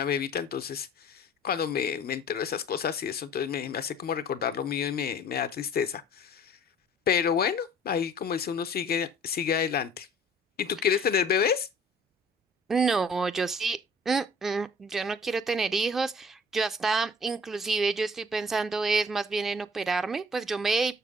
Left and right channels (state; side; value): normal; both; correlation 0.51